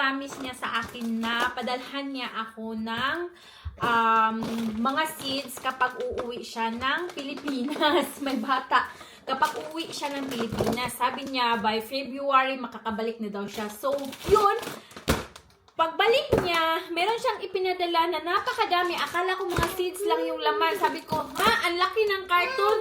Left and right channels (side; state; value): both; identical; correlation 1.00